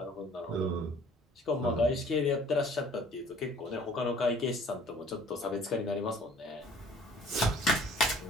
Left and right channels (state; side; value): normal; both; correlation 0.54